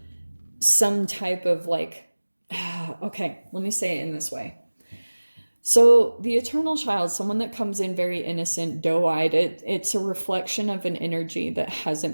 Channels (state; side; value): inverted; both; correlation -1.00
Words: some type of, like, okay, let me say it in this way. So the eternal child, someone that comes in very innocent, doe-eyed, it's a reflection of an energy that